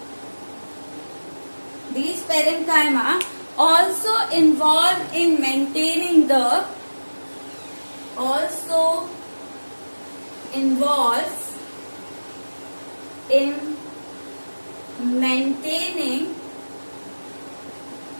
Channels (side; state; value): both; inverted; correlation -1.00